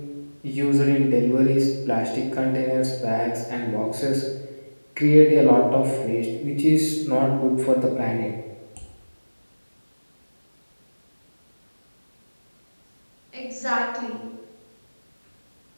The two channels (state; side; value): inverted; both; correlation -1.00